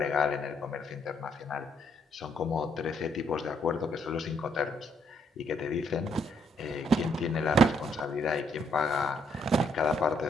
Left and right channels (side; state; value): both; normal; correlation 0.72